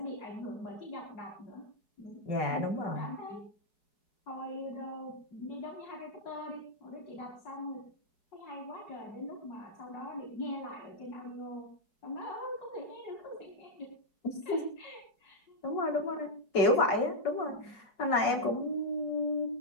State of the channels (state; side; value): late; right; 4.7 ms